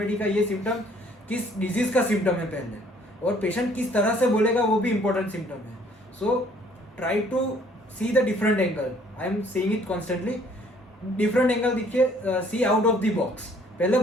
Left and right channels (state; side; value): normal; both; correlation 0.60